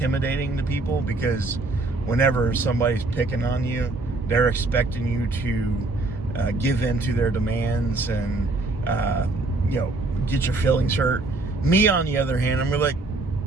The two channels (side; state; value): left; quieter; 3.2 dB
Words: to people because whenever somebody's picking on you, they're expecting you to give in to their demands and, get your feelings hurt. Me, on the other hand, I'm really like,